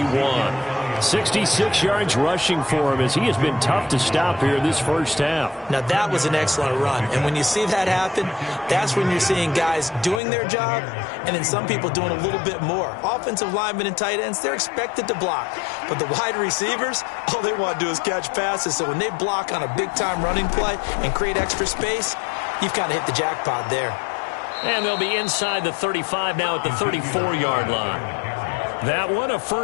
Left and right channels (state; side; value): drops out; right; at 10.2 s